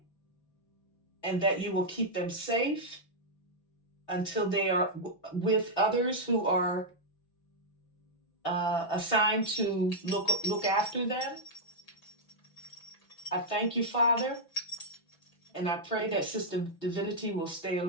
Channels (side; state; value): right; late; 6.0 ms